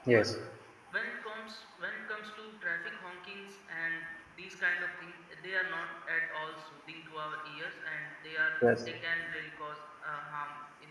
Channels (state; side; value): identical; both; correlation 1.00